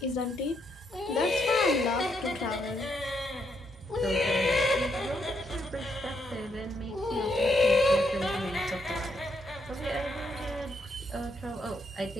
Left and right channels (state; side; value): normal; both; correlation 0.77